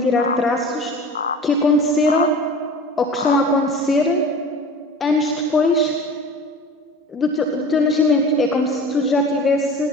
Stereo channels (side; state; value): both; normal; correlation 0.38